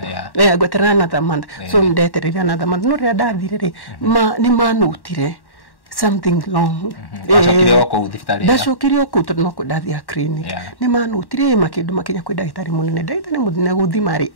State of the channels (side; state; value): right; late; 1.1 ms